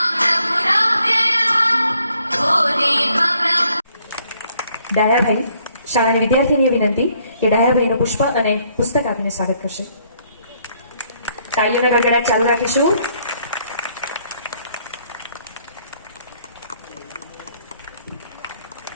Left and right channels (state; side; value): inverted; both; correlation -0.67